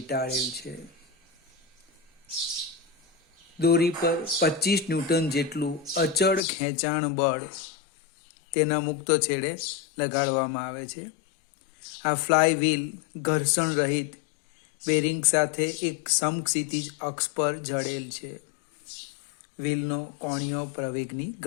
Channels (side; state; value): right; drops out; at 6.4 s